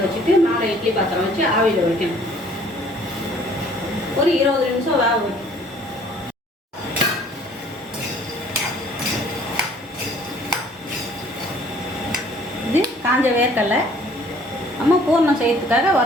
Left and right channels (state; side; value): normal; both; correlation 0.56